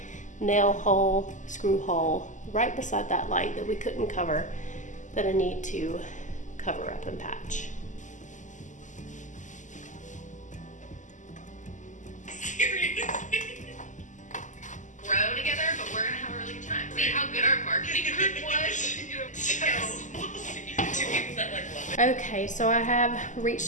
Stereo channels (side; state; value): right; late; 0.36 ms